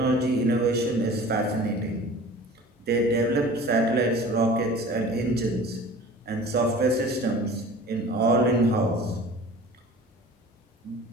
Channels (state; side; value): normal; both; correlation 0.43